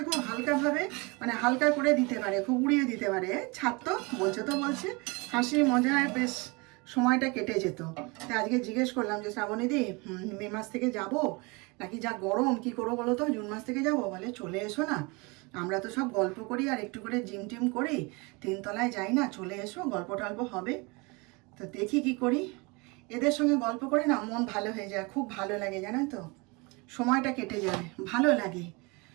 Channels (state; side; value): quieter; left; 27.7 dB